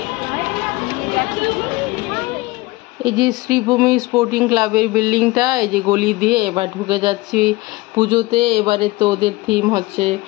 এই যে শ্রীভূমি স্পোর্টিং ক্লাবের বিল্ডিংটা, এই যে গলি দিয়ে এবার ঢুকে যাচ্ছি পুজোতে। এবারে তো ওদের থিম হচ্ছে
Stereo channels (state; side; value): quieter; right; 21.0 dB